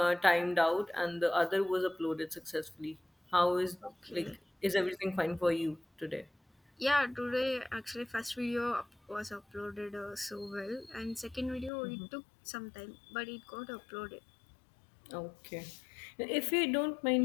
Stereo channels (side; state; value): right; drops out; at 11.7 s